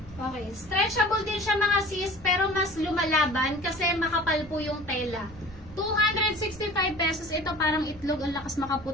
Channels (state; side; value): noise; right; rumble, 18 dB below the sound